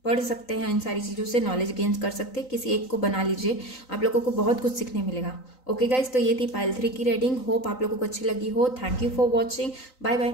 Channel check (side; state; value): right; late; 3.9 ms